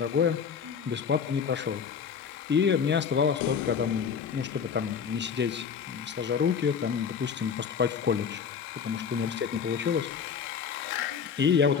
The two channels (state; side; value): quieter; right; 6.7 dB